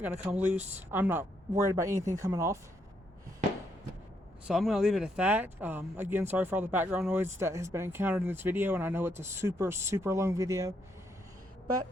going to come loose. I'm not worried about anything coming off. So I'm going to leave it at that. Again, sorry for all the background noise that has been encountered in this video, and I know it's a super, super long video. But,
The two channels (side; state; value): both; normal; correlation 0.76